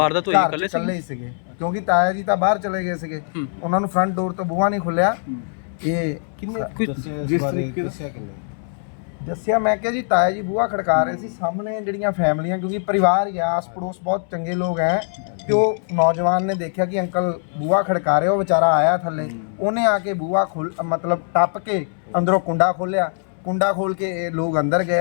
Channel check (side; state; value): right; silent; 65 dB below the other